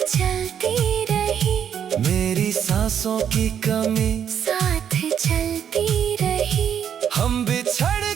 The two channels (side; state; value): left; quieter; 8.7 dB